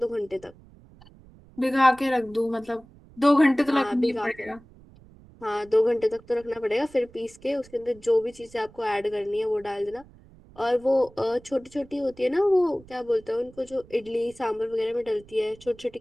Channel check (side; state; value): right; noise; rumble, 24 dB below the sound